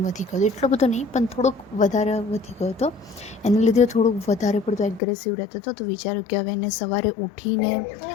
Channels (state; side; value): drops out; right; at 5.0 s